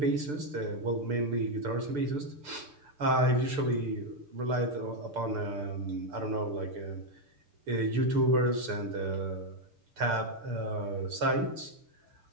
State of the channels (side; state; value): left; late; 6.8 ms